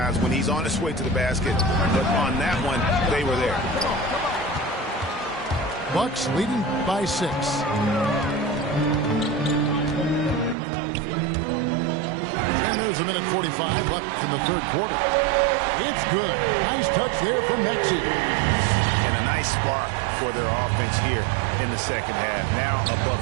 when he's on his way to the basket. But on that one, they were there. Bucks leading by 6. And there's a minute 45 left in the third quarter. It's good. Nice touch there from Maxey. And a nice spark for their offense here in the second half. Now above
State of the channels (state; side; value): drops out; left; at 10.6 s